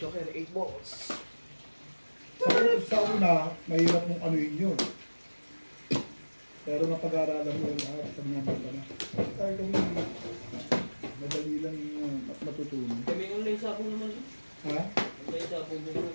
8 balls. Sa una, mahirap mong anuin yun. Pero mapag-aaralan mo yun sa mga bata na. Kahit kung madali lang matutunan. Kami online sabong naman yun. Ha? Online sabong din na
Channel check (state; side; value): inverted; both; correlation -1.00